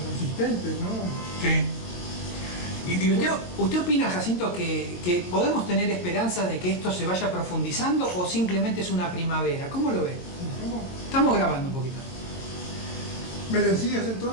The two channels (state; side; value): late; right; 22 ms